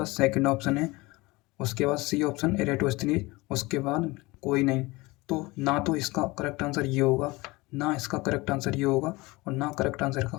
सेकंड ऑप्शन है, उसके बाद सी ऑप्शन एरेटोस्थनीज, उसके बाद कोई नहीं। तो ना तो इसका करेक्ट आंसर ये होगा, ना इसका करेक्ट आंसर ये होगा, और ना करेक्ट आंसर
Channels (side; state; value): right; quieter; 22.6 dB